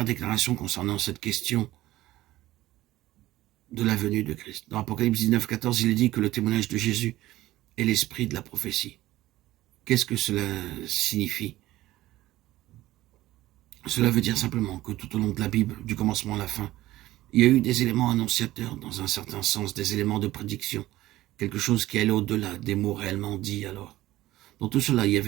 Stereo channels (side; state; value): left; quieter; 16.1 dB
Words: déclaration concernant cette question de la venue de Christ. Dans Apocalypse 19, 14, il est dit que le témoignage de Jésus est l'esprit de la prophétie. Qu'est-ce que cela signifie? Cela veut dire simplement que tout au long de la Bible, du commencement à la fin, il y a eu des éléments annonciateurs, dans un certain sens, des éléments de prédiction, quelque chose qui allait au-delà des mots réellement dits alors. Dans tout cela, il y